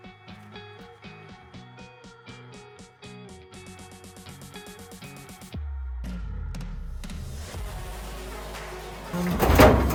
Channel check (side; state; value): both; identical; correlation 1.00